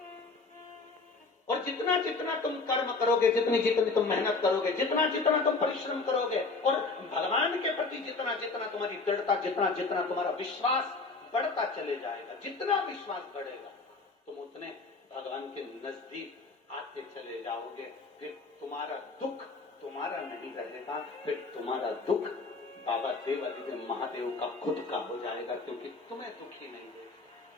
और जितना जितना तुम कर्म करोगे, जितनी जितनी तुम मेहनत करोगे, जितना जितना तुम परिश्रम करोगे, और भगवान के प्रति जितना जितना तुम्हारी दृढ़ता, जितना जितना तुम्हारा विश्वास बढ़ता चले जाएगा, जितना विश्वास बढ़ेगा तुम उतने भगवान के नजदीक आते चले जाओगे। फिर तुम्हारा दुख तुम्हारा नहीं रहेगा, फिर तुम्हारा दुख बाबा देवादिदेव महादेव का खुद का हो जाएगा, क्योंकि तुम्हें दुखी नहीं है।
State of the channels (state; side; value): quieter; right; 3.8 dB